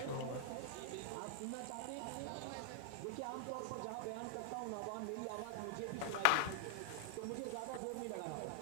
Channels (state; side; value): different; both; correlation 0.00